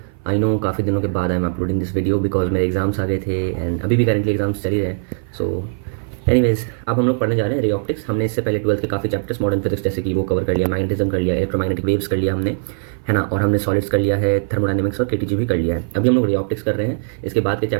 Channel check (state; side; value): silent; left; 56 dB below the other